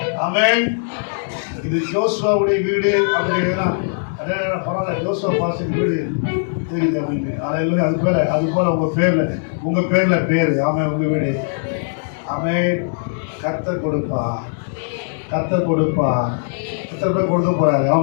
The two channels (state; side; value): silent; right; digital silence